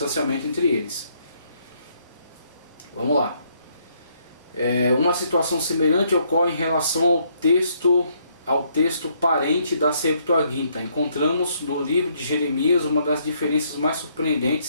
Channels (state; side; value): inverted; both; correlation -0.70